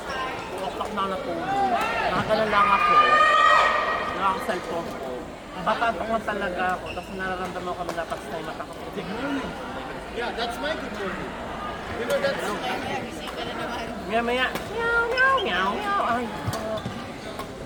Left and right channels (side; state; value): both; identical; correlation 1.00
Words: o'clock na ako natulog. Nakagalan lang ako, nakaka-cellphone ko. Batantok lang talaga ako, tapos nararamdaman ko na dapat sa mata ko. Yeah, that's my good morning. You know, that's... Kaya gising ka na naman. Maya, meow. Ay,